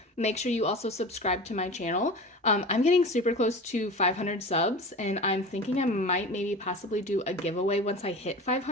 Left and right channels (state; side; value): normal; both; correlation 0.33